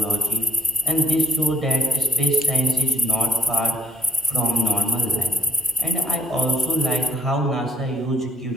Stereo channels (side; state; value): both; normal; correlation 0.57